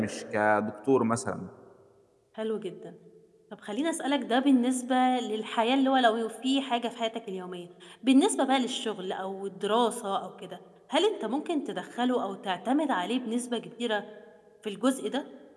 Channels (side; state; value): both; identical; correlation 1.00